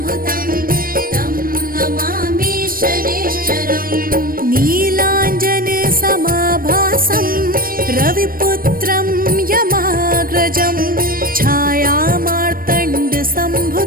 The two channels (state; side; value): late; left; 0.41 ms